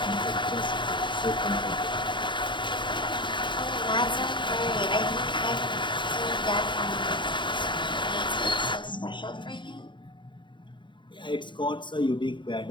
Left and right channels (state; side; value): late; right; 0.23 ms